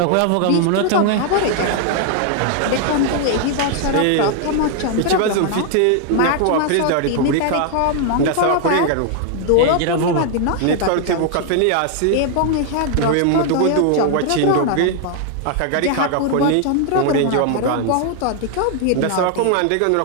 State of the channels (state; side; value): different; both; correlation 0.00